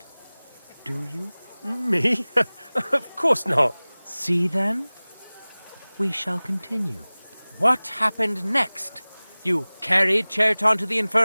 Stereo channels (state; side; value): inverted; both; correlation -1.00